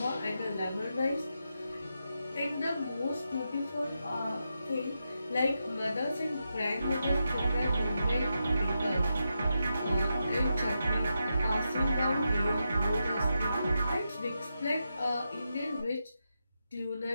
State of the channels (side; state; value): both; inverted; correlation -0.86